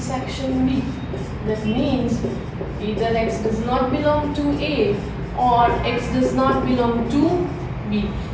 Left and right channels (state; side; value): identical; both; correlation 1.00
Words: B, that means either x does not belong to A or x does not belong to B.